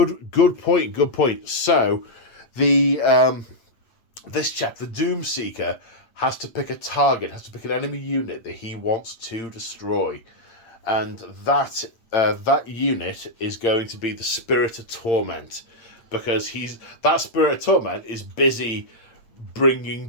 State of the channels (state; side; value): late; right; 8.8 ms